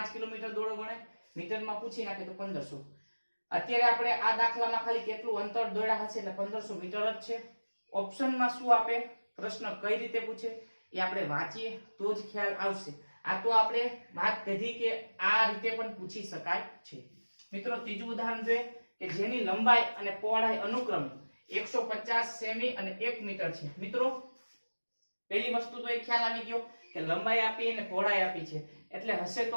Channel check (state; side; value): inverted; both; correlation -1.00